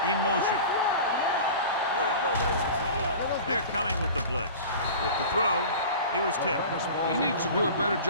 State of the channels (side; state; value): both; inverted; correlation -0.37